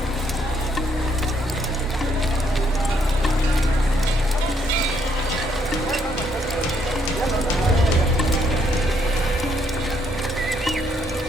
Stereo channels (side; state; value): both; normal; correlation 0.71